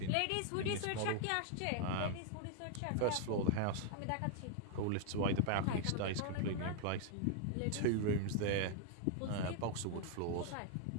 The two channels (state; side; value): different; both; correlation 0.00